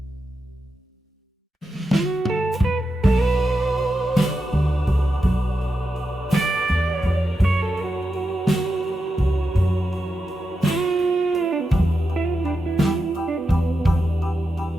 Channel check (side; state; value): both; normal; correlation 0.88